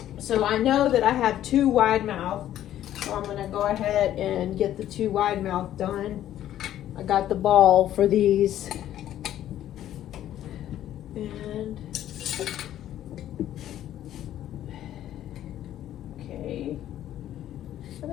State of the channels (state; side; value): quieter; right; 12.1 dB